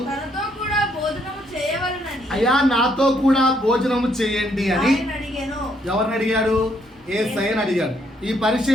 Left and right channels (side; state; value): both; normal; correlation 0.71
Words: తనతో కూడా భోజనము చేయవలెనని, అయ్యా నాతో కూడా భోజనము చేయండి అని అడిగాను. ఎవరిని అడిగాడు? యేసయ్యని అడిగాడు. ఈ